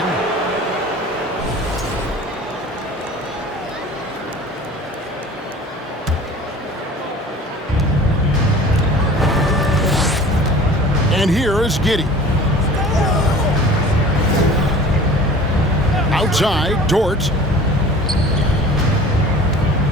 And here is Giddey. Outside, Dort.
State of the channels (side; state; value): both; normal; correlation 0.43